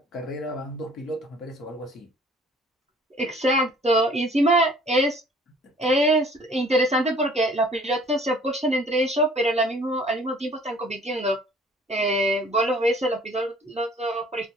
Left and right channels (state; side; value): normal; both; correlation 0.54